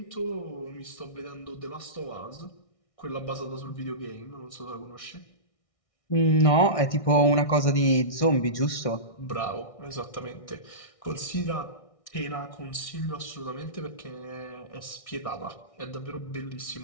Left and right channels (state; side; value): late; right; 1.6 ms